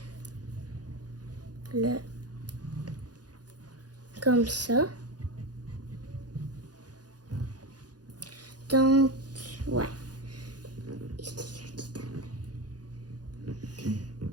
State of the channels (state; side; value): late; left; 0.69 ms